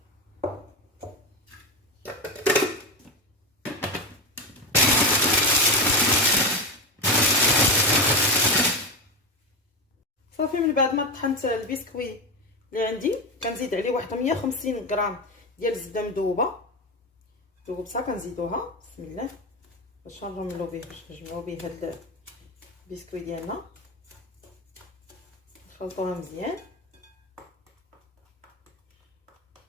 صافي من بعد ما طحنت البسكوي اللي عندي كنزيد عليه واحد 150 غرام ديال الزبده مذوبه، ذوبتها كنزيدوها بسم الله باش نرملو به، باش نجمعو به هاد البسكوي ديالنا، نخلطوها مزيان.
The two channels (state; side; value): normal; both; correlation 0.17